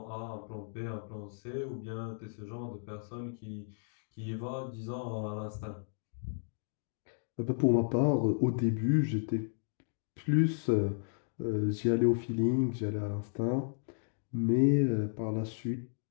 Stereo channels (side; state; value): right; silent; digital silence